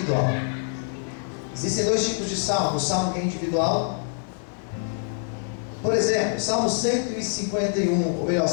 Existem dois tipos de salmo. O salmo que é individual, por exemplo, Salmo 151, ou melhor,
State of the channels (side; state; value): right; silent; 62 dB below the other